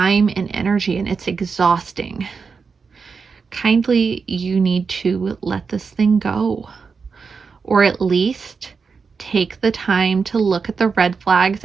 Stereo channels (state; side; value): quieter; left; 5.2 dB